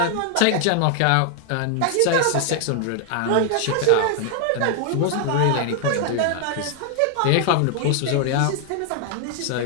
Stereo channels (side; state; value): both; different; correlation 0.00